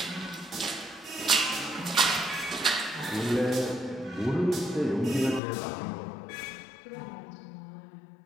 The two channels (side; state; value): right; drops out; at 5.4 s